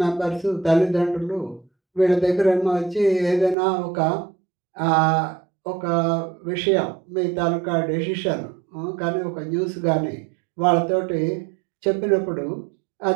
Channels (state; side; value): drops out; left; at 3.6 s